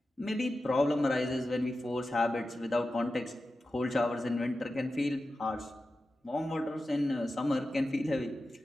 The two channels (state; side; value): normal; both; correlation 0.92